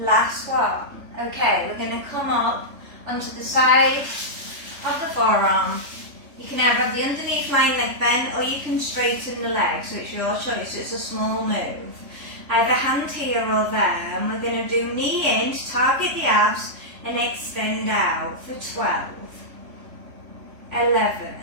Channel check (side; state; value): left; late; 3.3 ms